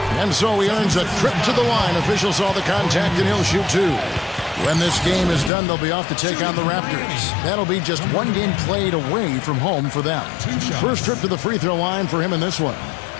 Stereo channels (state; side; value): drops out; right; at 5.5 s